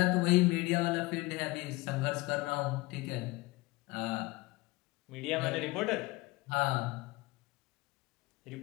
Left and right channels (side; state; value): right; quieter; 22.3 dB